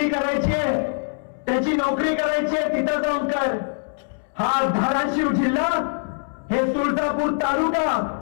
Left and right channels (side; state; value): right; silent; 63 dB below the other